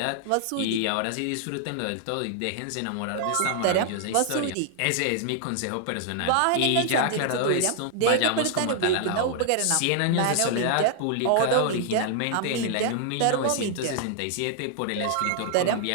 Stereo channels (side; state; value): both; different; correlation 0.00